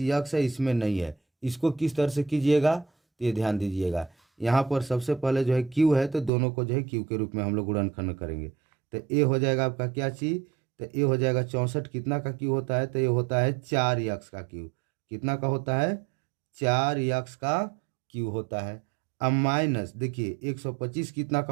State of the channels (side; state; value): left; drops out; at 6.3 s